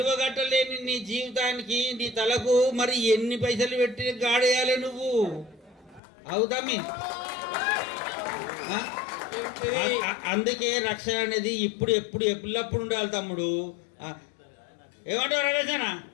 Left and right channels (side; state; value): right; drops out; at 6.0 s